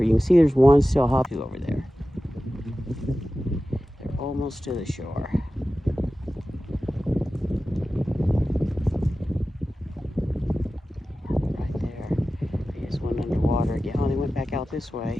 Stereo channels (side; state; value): both; normal; correlation 0.95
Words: You can see there's one still hopping over there. They're almost to the shore. Right there. They just went underwater again. Oh, they went back out this